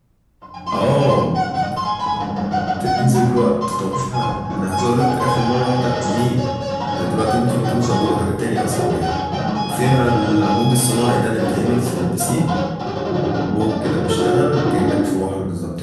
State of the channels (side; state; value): both; identical; correlation 1.00